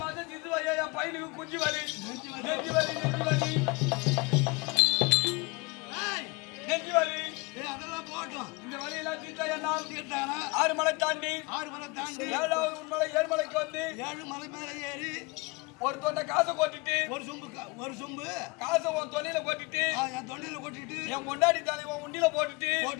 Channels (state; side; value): quieter; right; 26.4 dB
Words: மாசம் சிந்து வலி என் பையனுக்கு குஞ்சு வலி நெஞ்சு வலி அதெல்லாம் போட்டோம் இந்த வலியெல்லாம் தீர்த்தா என்னால் தீர்த்தானா 6 மலை தாண்டி 7வது மலை 7 மலைக்கு வந்து 7 மலை மேல ஏறி ஒரு தொண்டை காசை கொட்டிட்டு ஒரு சொம்பு காசை உன் தொண்டையில கொட்டிட்டு என் தொண்டையில கொட்டிட்டு என் கொண்டாடி தாலி உன் உண்டியில போட்டுட்டு